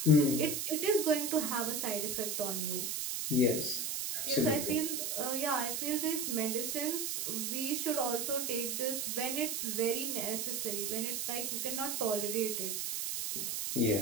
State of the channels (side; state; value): right; noise; hiss, 1 dB below the sound